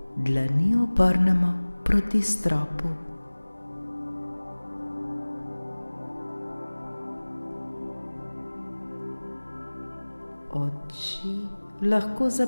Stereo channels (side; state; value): both; inverted; correlation -1.00